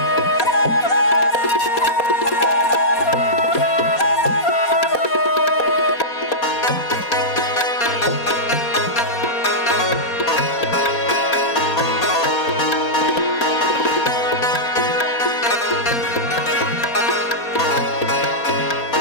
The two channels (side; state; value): right; late; 4.2 ms